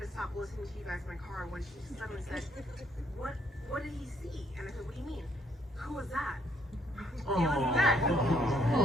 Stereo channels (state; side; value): normal; both; correlation 0.70